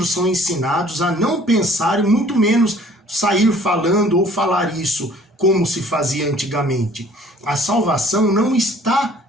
são ensinados a não pensar e muito menos sair falando ou falar isso como se fazia antigamente. A salvação não está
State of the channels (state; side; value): normal; both; correlation 0.54